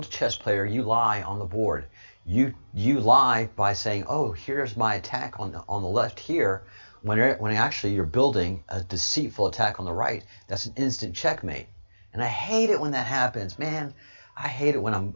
chess player, you lie on the board. You lie by saying, oh, here's my attack on the left here, when actually you're building a deceitful attack on the right. That's an instant checkmate. And I hate it when that happens. Man, I hate it when I'm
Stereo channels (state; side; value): inverted; both; correlation -1.00